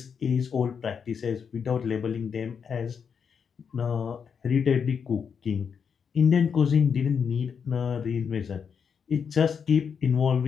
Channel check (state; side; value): quieter; right; 6.7 dB